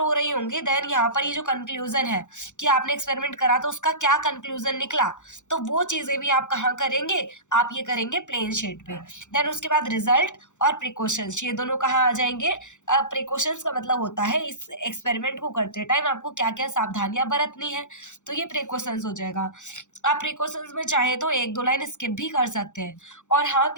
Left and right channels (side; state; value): right; late; 0.85 ms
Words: रही होंगी। देन यहाँ पर ये जो कंक्लूजन है कि आपने एक्सपेरिमेंट करा तो उसका क्या कंक्लूजन निकला, तो वो चीजें भी आप कहाँ करेंगे? आप ये करेंगे प्लेन शीट पे। देन उसके बाद रिजल्ट और प्रिकॉशंस, ये दोनों कहाँ आ जाएंगे? प्रिकॉशंस का मतलब होता है इस एक्सपेरिमेंट को करते टाइम आपको क्या क्या सावधानियां बरतनी है, तो ये प्रिकॉशंस हो जाएगा। आप प्रिकॉशंस में चाहे तो एक दो लाइन स्किप भी कर सकते हैं। और हाँ